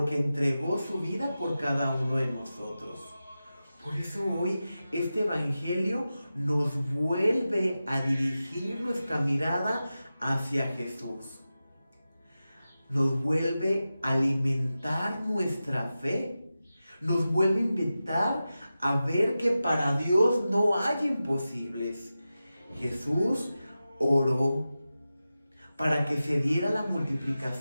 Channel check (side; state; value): both; inverted; correlation -0.93